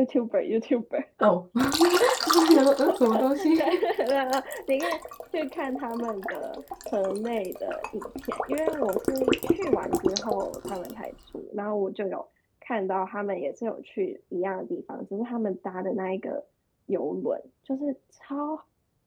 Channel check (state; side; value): identical; both; correlation 1.00